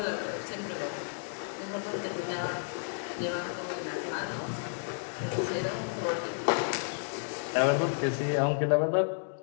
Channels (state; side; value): silent; right; digital silence